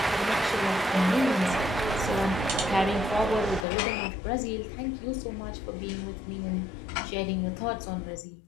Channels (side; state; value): right; drops out; at 3.7 s